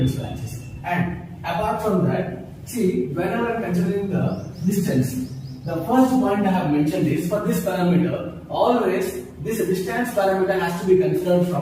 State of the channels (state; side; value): identical; both; correlation 1.00